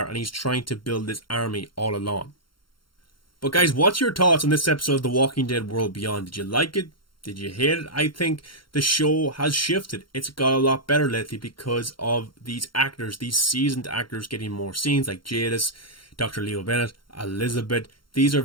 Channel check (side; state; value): right; late; 0.73 ms